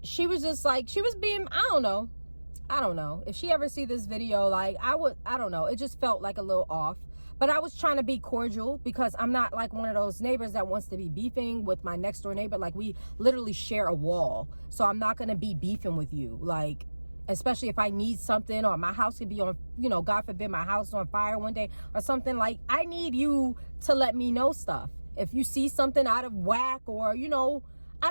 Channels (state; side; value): inverted; both; correlation -1.00